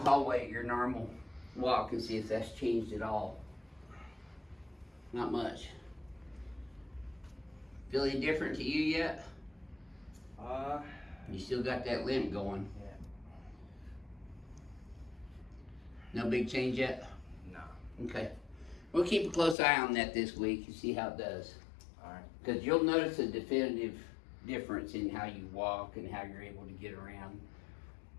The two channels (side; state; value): right; drops out; at 19.6 s